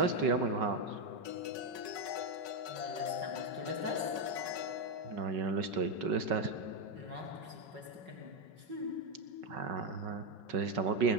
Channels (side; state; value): left; late; 5.4 ms